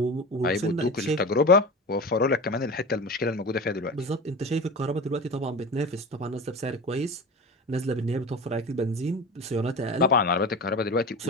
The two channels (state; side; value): normal; both; correlation 0.30